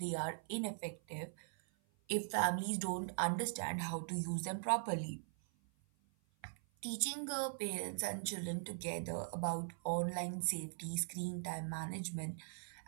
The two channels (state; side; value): silent; left; 50 dB below the other